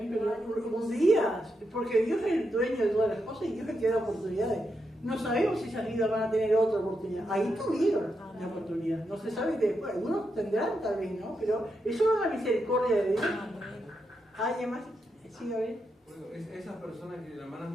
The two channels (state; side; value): normal; both; correlation 0.84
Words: un día, porque Dios es el dueño de todas las cosas y Dios es el que da oportunidades. No sabemos si esas vidas van a tener otra oportunidad. Ahí tuvieron la oportunidad. No se sabe después. Algunos tendrán tal vez, ¿no? Pero eso no es la misericordia de Dios. Además, sí, a ver. Bueno, esas personas que las hermanas